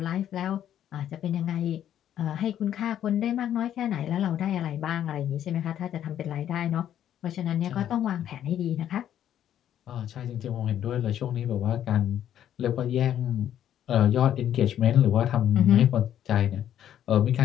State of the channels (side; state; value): right; quieter; 10.7 dB